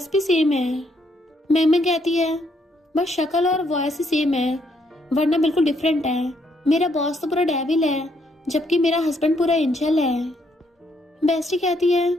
भी सेम है। मैम कहती है बस शक्ल और वॉइस ही सेम है वरना बिल्कुल डिफरेंट है। मेरा बॉस तो पूरा डेविल है जबकि मेरा हस्बैंड पूरा एंजल है। बेस्टी कहती है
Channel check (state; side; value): normal; both; correlation 0.72